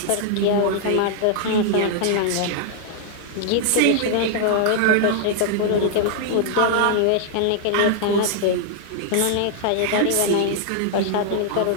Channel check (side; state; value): both; different; correlation -0.01